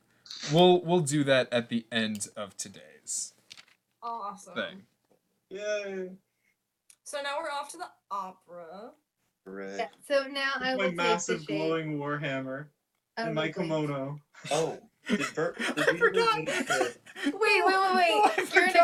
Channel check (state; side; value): identical; both; correlation 1.00